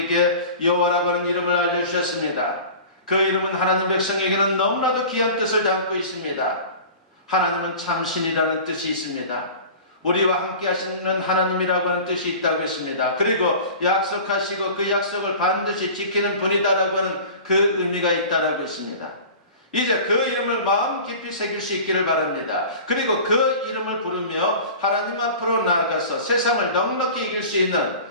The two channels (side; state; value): both; inverted; correlation -0.38